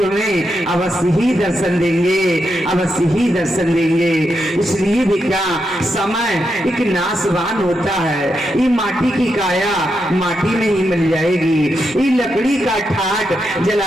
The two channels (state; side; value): normal; both; correlation 0.84